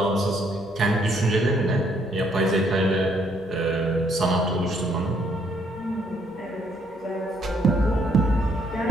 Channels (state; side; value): normal; both; correlation 0.69